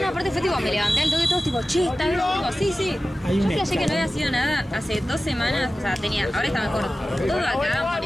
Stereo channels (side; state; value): both; normal; correlation 0.95